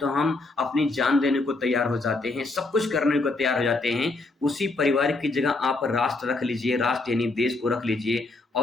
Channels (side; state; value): right; quieter; 3.3 dB